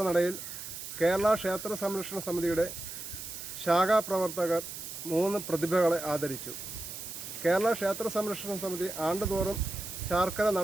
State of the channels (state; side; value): noise; right; hiss, 9 dB below the sound